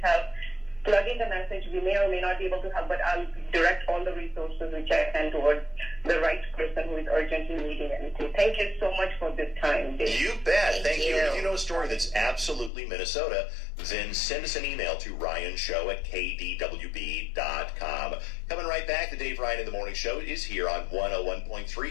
help, plug in the message. We may or may not be able to help, but I'll direct all the resources which I can towards the right person who is urgently needing anything. Thank you so much for this time, Dave. You bet. Thank you. you. If you know a story that's absolutely Minnesota, then send us an email to ryanshow@kdwb.com. Coming right back, the Dave Ryan in the Morning Show is here on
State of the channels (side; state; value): right; drops out; at 12.7 s